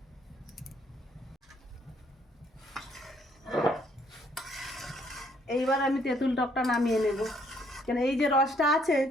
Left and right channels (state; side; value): normal; both; correlation 0.66